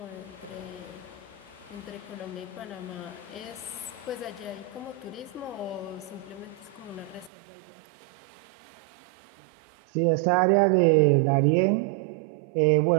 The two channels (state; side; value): drops out; left; at 7.3 s